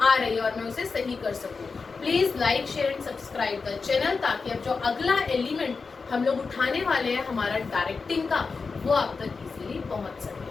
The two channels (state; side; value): quieter; right; 4.6 dB